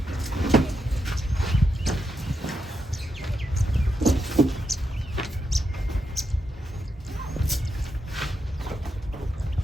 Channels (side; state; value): both; normal; correlation 0.83